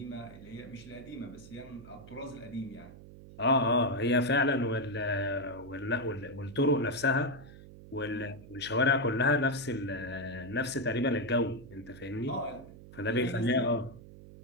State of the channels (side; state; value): right; noise; hum, 17 dB below the sound